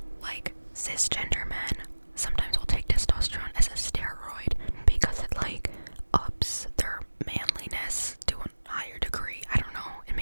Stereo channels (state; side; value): inverted; both; correlation -1.00